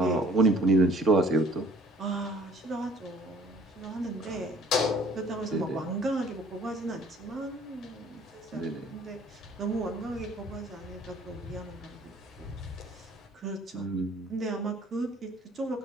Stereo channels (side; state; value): both; normal; correlation 0.56